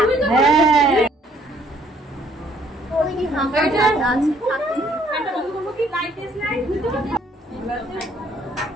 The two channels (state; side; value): normal; both; correlation 0.63